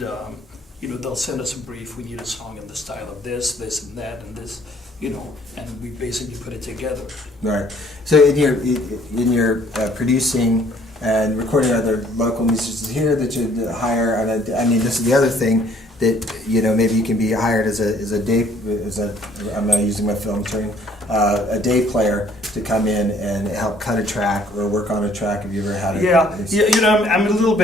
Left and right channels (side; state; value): both; normal; correlation 0.60